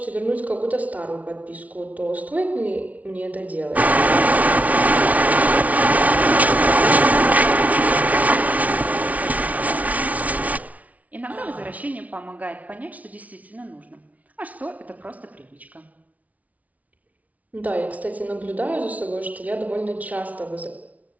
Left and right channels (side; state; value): left; late; 0.070 ms